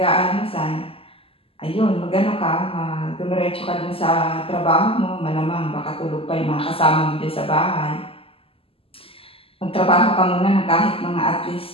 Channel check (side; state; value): right; late; 0.27 ms